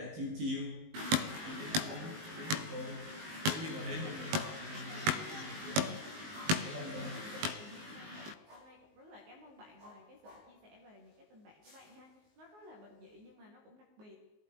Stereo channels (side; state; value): left; late; 19 ms